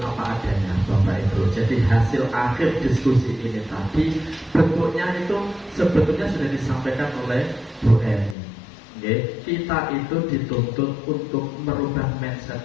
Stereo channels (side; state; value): right; drops out; at 8.3 s